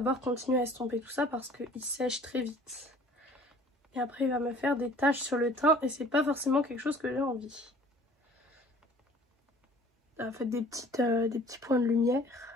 continuer à estomper tout ça parce qu'il sèche très vite. Et après, il va me faire des taches sur le teint et c'est pas forcément quelque chose que j'ai envie. Faites des petits points de lumière.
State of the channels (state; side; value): normal; both; correlation 0.50